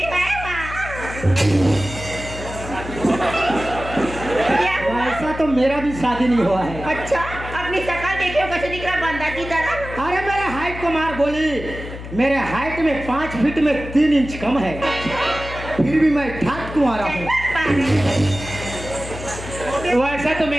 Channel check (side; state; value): left; noise; hum, 11 dB below the sound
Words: है माँ। क्या हुआ? ऐसा तो मेरा भी शादी नहीं हुआ है। अच्छा, अपनी शक्ल देखियो कैसे दिख रहा बंदा की तरह। अरे मेरे हाइट को मार गोली। मेरे हाइट में 5 फीट में 3 इंच कम है, फिर भी मैं ठाक तुम्हारा हूँ। वैसा तो